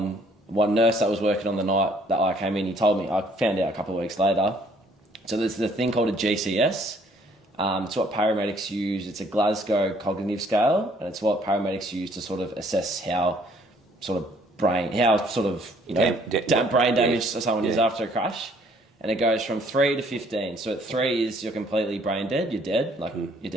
one nurse that was working on the night that I came in, he told me, I found out a couple of weeks later. So there's the thing called a GCS. It's what paramedics use. It's a Glasgow cognitive scale, and it's what paramedics use to sort of assess how brain damage someone is after a crash. And it goes from 3 to 15. So at 3 is you're completely brain dead. You're dead. You're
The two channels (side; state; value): both; normal; correlation 0.62